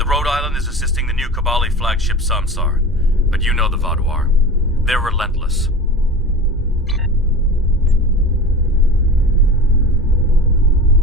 Rhode Island is assisting the new Kabali flagship Samsar, but you know the Vaadwaur. They're relentless.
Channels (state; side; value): normal; both; correlation 0.34